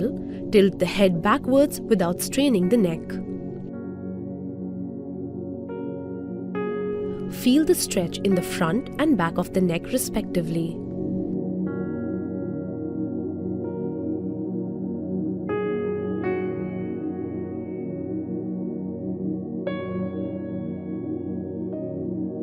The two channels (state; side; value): identical; both; correlation 1.00